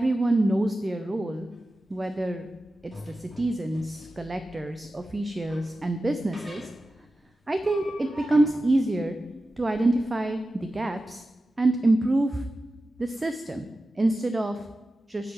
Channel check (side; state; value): both; normal; correlation 0.93